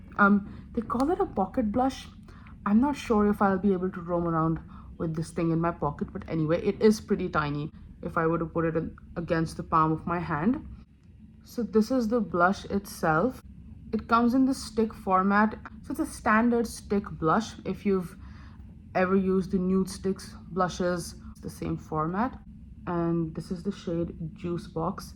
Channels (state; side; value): identical; both; correlation 1.00